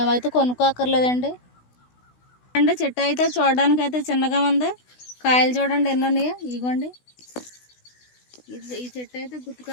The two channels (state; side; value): late; right; 16 ms